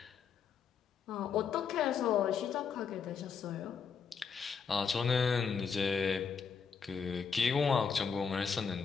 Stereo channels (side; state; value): right; quieter; 6.2 dB